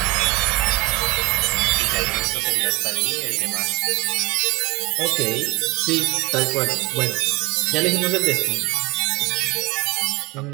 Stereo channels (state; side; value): quieter; left; 22.8 dB